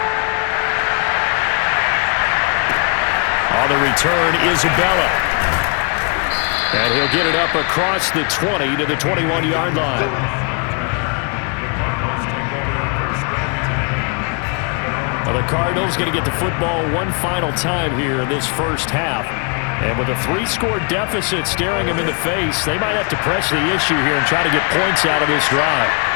On the return, Isabella. And he'll get it up across the 20 to the 21-yard line. Well, the Cardinals going to get the football one final time here in this first half. And with a 3-score deficit staring them in the face, they might have to press the issue here and try to get points out of this drive.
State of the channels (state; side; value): quieter; right; 36.6 dB